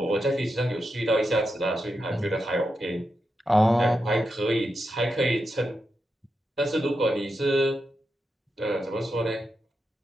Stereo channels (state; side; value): normal; both; correlation 0.87